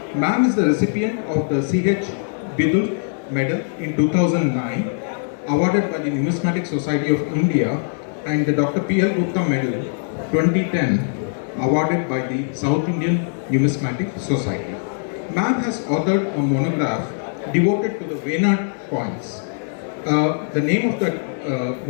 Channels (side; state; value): right; silent; digital silence